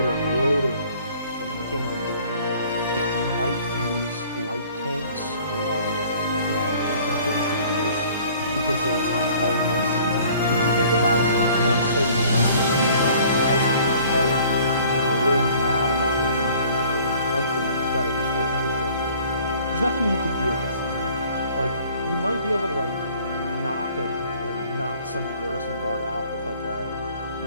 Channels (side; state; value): both; inverted; correlation -0.53